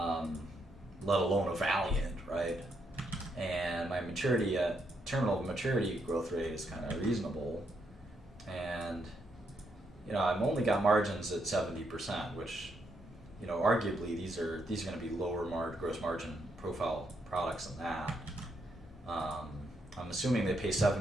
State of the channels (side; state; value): both; normal; correlation 0.78